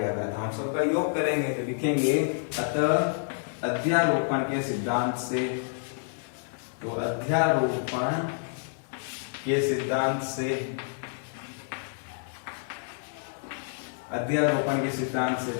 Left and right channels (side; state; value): right; silent; digital silence